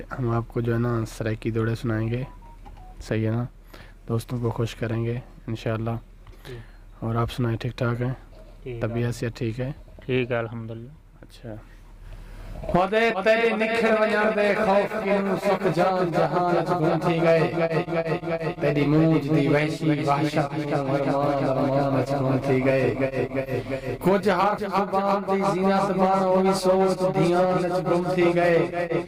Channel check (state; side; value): identical; both; correlation 1.00